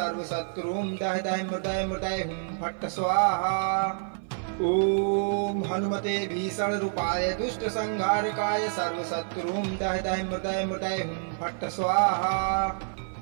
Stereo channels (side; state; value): left; silent; 56 dB below the other